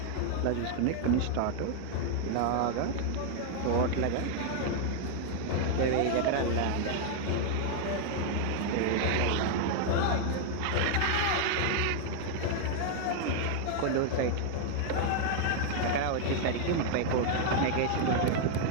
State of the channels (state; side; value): different; both; correlation 0.00